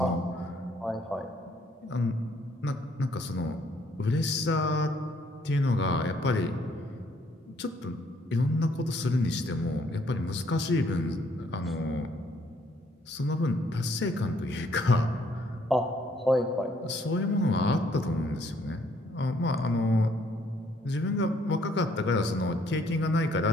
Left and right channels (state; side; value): normal; both; correlation 0.66